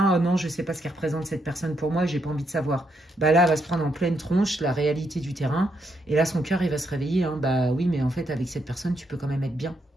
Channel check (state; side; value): normal; both; correlation 0.78